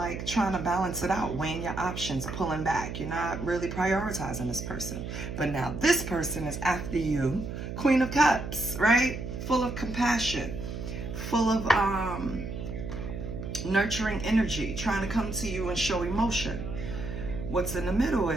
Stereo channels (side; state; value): right; noise; hum, 7 dB below the sound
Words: trying to balance it out, weighing your options, pulling back. You're not really prioritizing this person. But now this person is after you, Queen of Cups, right? Full of compassion, full of nurturing energy, trying to come to you and show emotion. What's in the middle